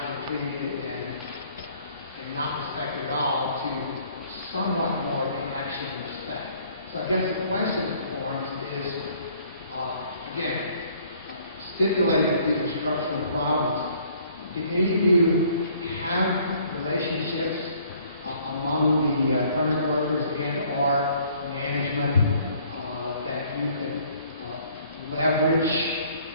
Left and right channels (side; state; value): both; inverted; correlation -0.59